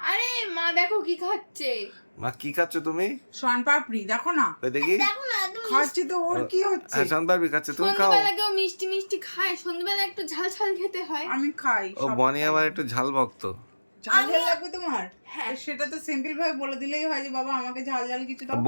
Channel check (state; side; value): inverted; both; correlation -1.00